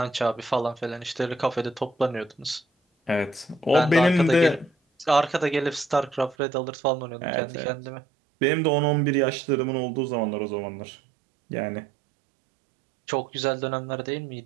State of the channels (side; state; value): left; drops out; at 6.4 s